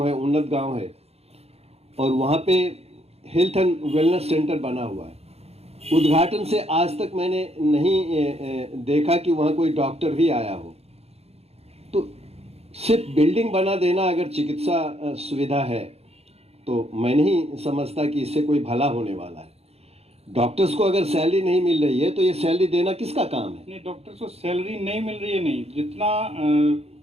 है, उन्नत गांव है, और वहाँ पे हेल्थ एंड वेलनेस सेंटर बना हुआ है। उद्घाटन से आज तक मैंने नहीं देखा कि वहाँ कोई डॉक्टर भी आया हो। तो सिर्फ बिल्डिंग बना देना अगर चिकित्सा सुविधा है तो मैं नहीं समझता कि इससे कोई भला होने वाला है। डॉक्टर्स को अगर सैलरी नहीं मिल रही है तो ये सैलरी देना किसका काम है? नहीं, डॉक्टर्स को सैलरी नहीं मिल रही है, नहीं, जितना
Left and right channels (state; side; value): late; left; 0.30 ms